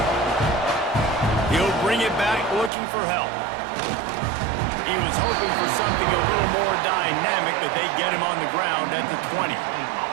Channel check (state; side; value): drops out; left; at 2.7 s